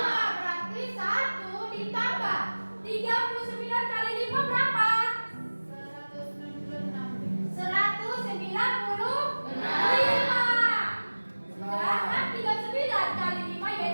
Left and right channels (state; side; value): inverted; both; correlation -1.00